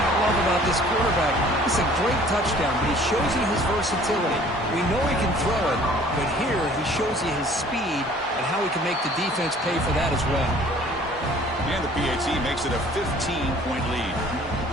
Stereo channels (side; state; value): both; normal; correlation 0.53